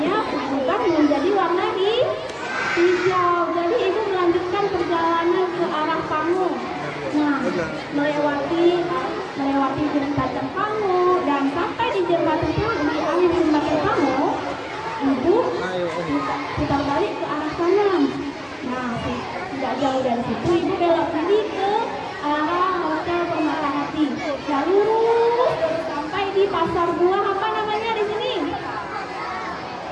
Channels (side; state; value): both; identical; correlation 1.00